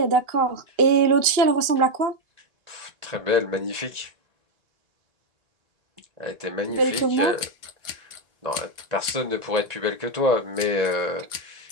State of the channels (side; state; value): left; late; 2.8 ms